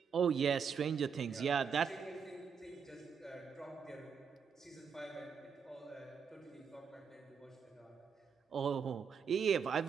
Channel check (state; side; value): quieter; left; 6.5 dB